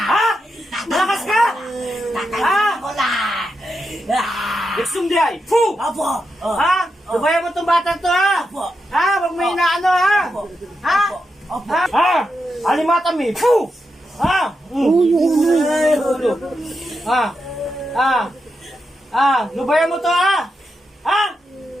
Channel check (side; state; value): both; normal; correlation 0.86